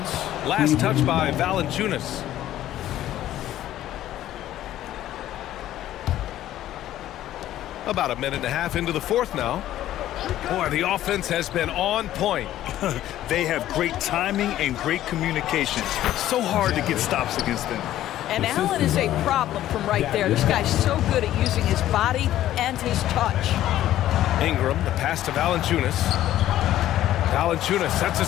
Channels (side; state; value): right; quieter; 13.2 dB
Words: Last touch by Valanciunas. About a minute and a half into the 4th now. Boy, the offense has been on point. They have great timing and great communication. So hard to get stops against them. And Allen is a problem from right there. This guy's so good at using his body and his touch. Ingram, the pass to Valanciunas. Valanciunas sets a